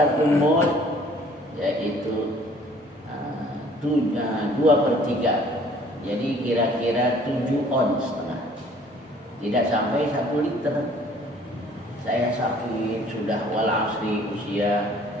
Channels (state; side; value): normal; both; correlation 0.55